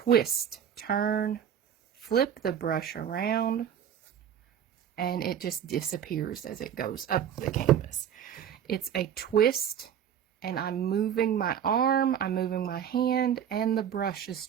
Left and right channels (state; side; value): quieter; left; 9.1 dB